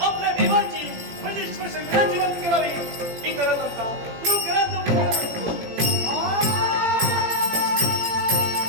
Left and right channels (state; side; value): late; left; 17 ms